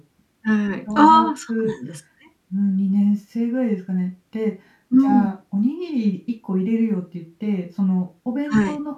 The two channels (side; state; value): both; identical; correlation 1.00